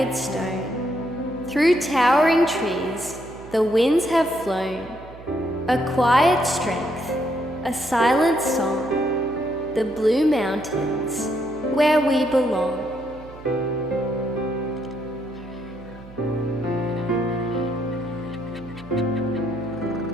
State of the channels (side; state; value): right; noise; hum, 18 dB below the sound